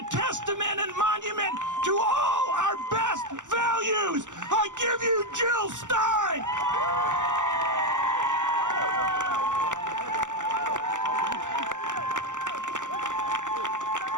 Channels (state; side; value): late; left; 0.86 ms